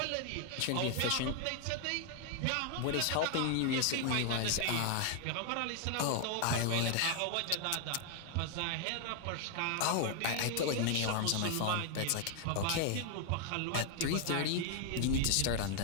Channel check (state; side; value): different; both; correlation 0.00